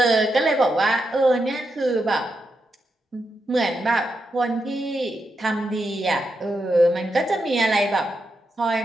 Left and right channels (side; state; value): both; normal; correlation 0.85